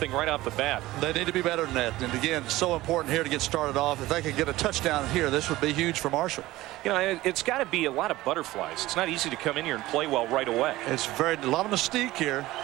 right off the bat. They need to be better than that. And again, so important here to get started off. If they could get a touchdown here, this would be huge for Marshall. You know, it's got to be a lot of butterflies. It's not easy to come in here and play well right away. It's a lot of mystique here.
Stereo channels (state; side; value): quieter; left; 17.5 dB